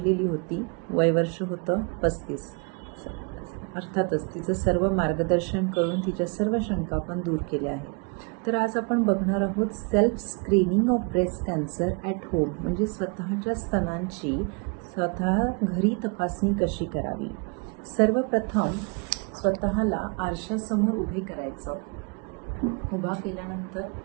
होती. वयवर्ष होतं 35. अर्थातच तिचं सर्व मार्गदर्शन करून तिच्या सर्व शंका आपण दूर केल्या आहेत. तर आज आपण बघणार आहोत self screening of breast cancer at home, म्हणजे स्वतःच्या स्तनांची स्वतः घरी तपासणी कशी करावी. सर्वप्रथम स्वतःला आरशासमोर उभे करायचं. उभा केल्यानंतर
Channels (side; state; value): left; quieter; 34.7 dB